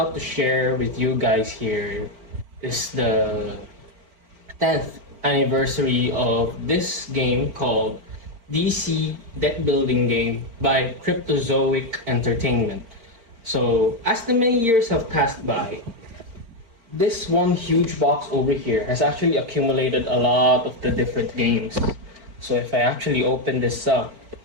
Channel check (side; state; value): left; late; 4.4 ms